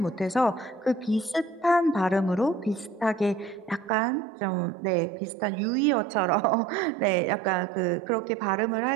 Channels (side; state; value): left; drops out; at 3.9 s